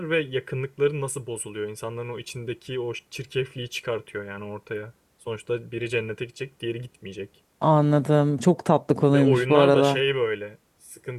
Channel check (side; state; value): both; identical; correlation 1.00